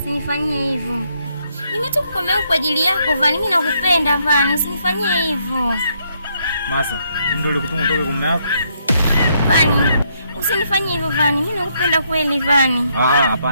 hivyo. Nimetoka kwa mume wangu kwa ajili yako Vani, mimi nakupenda Vani, usinifanyie hivyo. Masa, ndio ulikutuma utoke kwa mume wako? Vani, usinifanyie hivyo Vani, mimi nakupenda kweli Vani.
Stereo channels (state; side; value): inverted; both; correlation -0.74